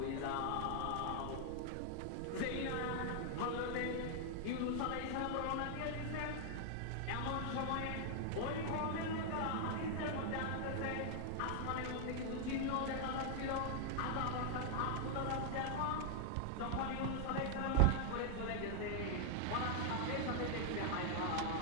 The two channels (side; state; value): both; different; correlation 0.00